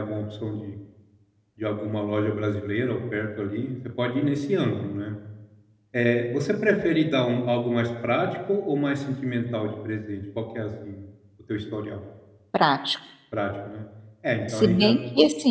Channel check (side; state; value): both; identical; correlation 1.00